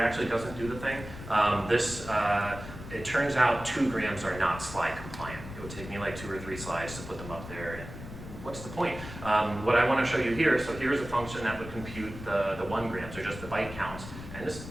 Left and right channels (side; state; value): left; noise; rumble, 12 dB below the sound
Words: actually doesn't do the thing. It turns out 2 grams are not slide compliant. It would take me like 2 or 3 slides to put them up there. And what's the point? What I want to show you here, so here's a function that would compute the 1 grams, or just the byte counts. And this